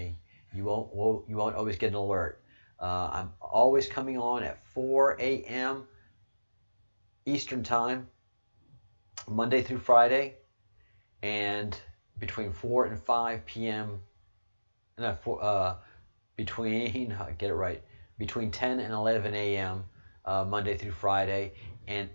You won't always get an alert. I'm always coming on at 4 a.m. Eastern Time, Monday through Friday, and between 4 and 5 p.m. Between 10 and 11 a.m. Monday through Friday, and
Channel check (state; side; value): inverted; both; correlation -1.00